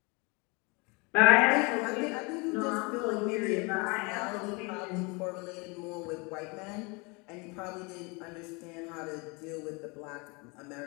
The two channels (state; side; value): quieter; right; 28.9 dB